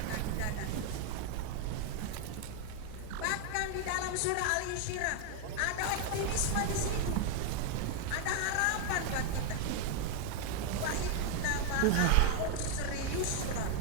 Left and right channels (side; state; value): both; different; correlation 0.01